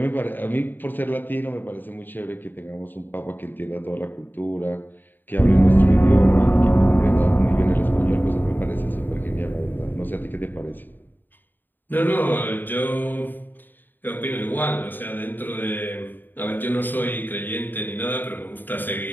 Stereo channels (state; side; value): late; right; 0.091 ms